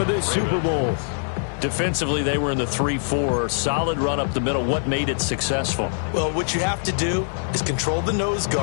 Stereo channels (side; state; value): right; silent; digital silence